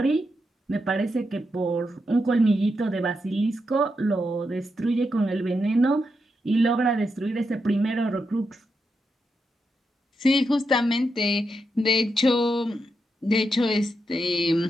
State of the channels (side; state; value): both; normal; correlation 0.84